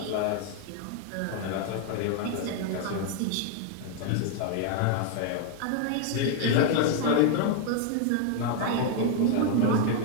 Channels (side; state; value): both; different; correlation 0.00